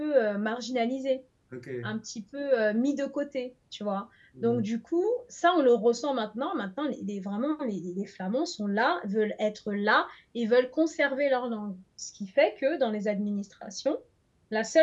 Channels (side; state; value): both; identical; correlation 1.00